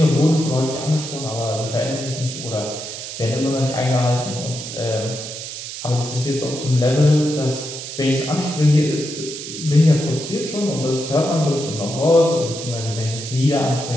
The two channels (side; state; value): right; noise; hiss, 9 dB below the sound